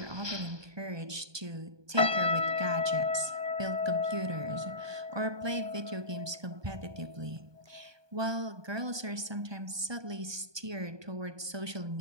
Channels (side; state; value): left; late; 1.2 ms